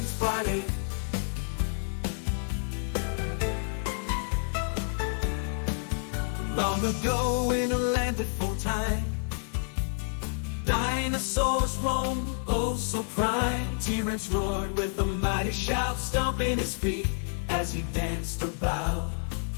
Party. Long ago in a land before time, dinosaurs roamed, oh so prime. T-Rex roared with a mighty shout, stomping his feet as he danced about.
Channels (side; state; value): right; silent; digital silence